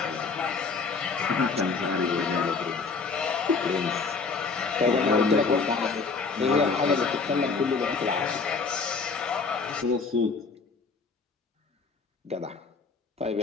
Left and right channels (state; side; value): quieter; right; 4.6 dB